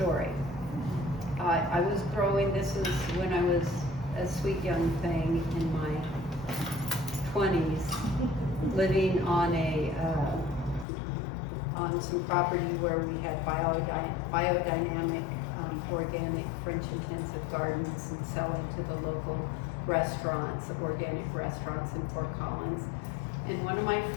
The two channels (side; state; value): right; drops out; at 10.9 s